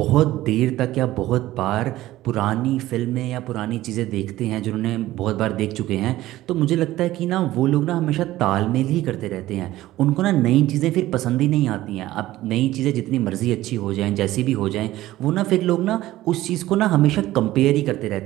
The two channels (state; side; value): quieter; left; 15.8 dB